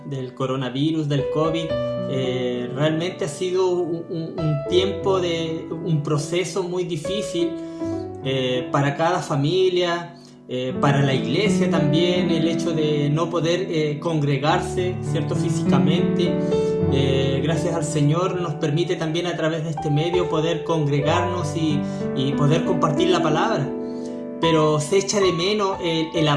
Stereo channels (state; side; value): identical; both; correlation 1.00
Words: del coronavirus, del COVID, realmente ha sido un tiempo un proceso muy difícil para cada familia, para la iglesia también, el hecho de no poder congregarse, ¿cierto? Físicamente. Gracias al Señor nos permite también a través de este medio poder congregarnos y poder compartir la palabra. Pero se echa de menos el